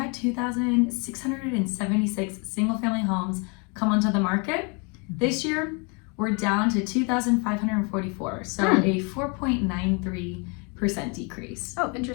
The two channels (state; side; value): quieter; right; 33.4 dB